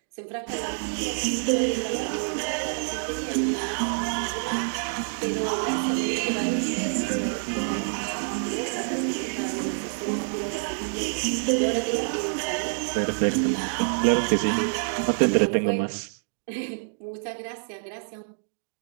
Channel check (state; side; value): silent; left; digital silence